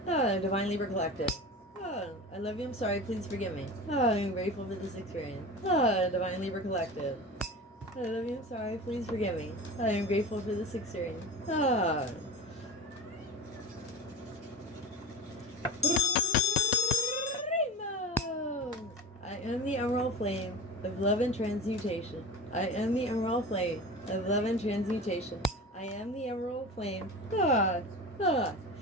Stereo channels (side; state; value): both; normal; correlation 0.32